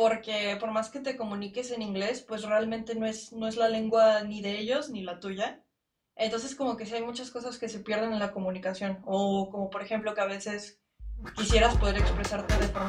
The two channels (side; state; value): both; identical; correlation 1.00